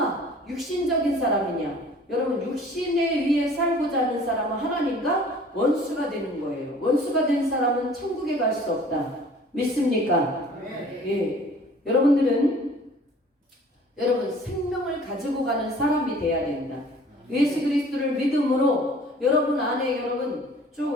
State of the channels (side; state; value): both; normal; correlation 0.50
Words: 육신적인 사람이냐. 여러분 육신에 위해 살고자 하는 사람은 하나님과 원수가 되는 거예요. 원수가 된 사람은 천국에 갈 수 없다. 믿습니까? 예. 여러분들은 여러분 생명을 가지고 가는 사람이 돼야 된다. 예수 그리스도를 믿음으로 여러분 안에 여러분